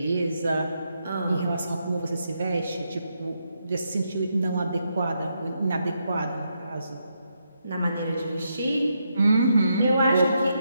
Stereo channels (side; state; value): both; inverted; correlation -0.81